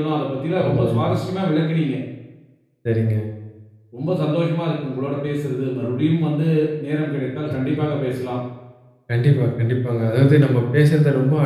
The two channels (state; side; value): identical; both; correlation 1.00